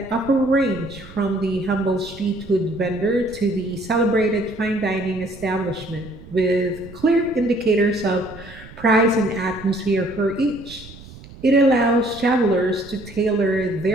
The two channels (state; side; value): noise; right; rumble, 18 dB below the sound